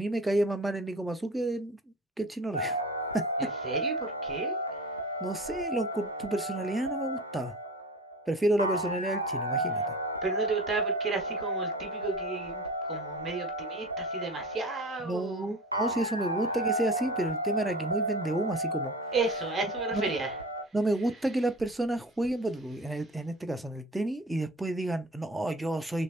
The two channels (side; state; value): both; normal; correlation 0.35